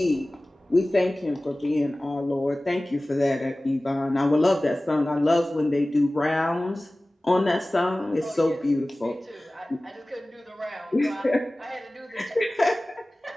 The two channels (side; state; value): both; normal; correlation 0.98